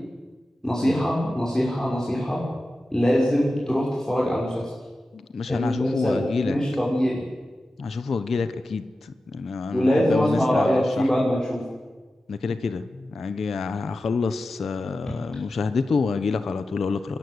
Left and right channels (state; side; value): normal; both; correlation 0.93